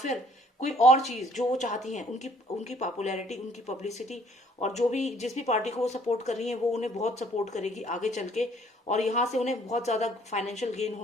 कोई और चीज जो वो चाहती हैं, उनकी उनकी पॉपुलैरिटी, उनकी पब्लिसिटी, और जो भी जिस भी पार्टी को वो सपोर्ट कर रही है वो उन्हें बहुत सपोर्ट करेगी आगे चल के, और यहाँ से उन्हें बहुत ज्यादा फाइनेंशियल गेन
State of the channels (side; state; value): both; normal; correlation 0.61